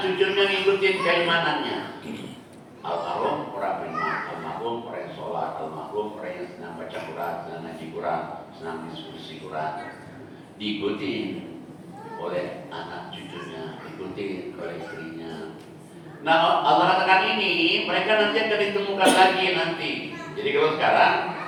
cucunya ngikutin keimanannya. Almarhum orang beriman, almarhum orang yang sholat, almarhum orang yang senang baca Quran, senang ngaji Quran, senang diskusi Quran. Diikuti oleh anak cucunya, diikuti oleh istrinya. Nah, Allah katakan ini, mereka nanti akan ditemukan lagi nanti. Jadi kalau sekarang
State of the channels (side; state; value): both; identical; correlation 1.00